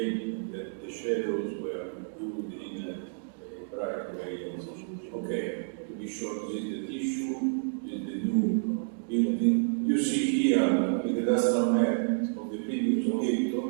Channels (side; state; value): left; silent; digital silence